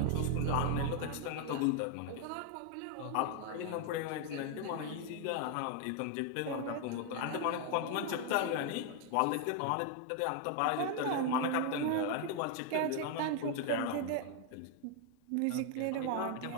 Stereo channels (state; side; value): different; both; correlation 0.00